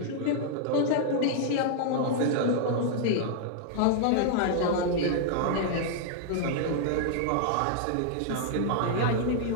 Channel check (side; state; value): both; different; correlation -0.01